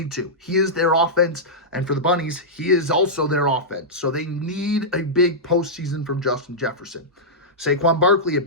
to. He is their offense, and for the Bunnies, he is also their offense. So they need a big postseason from Justin Jefferson. Saquon Barkley, a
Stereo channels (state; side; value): normal; both; correlation -0.12